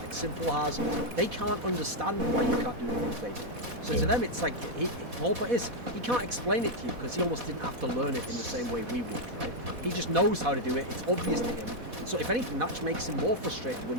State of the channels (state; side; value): late; left; 4.1 ms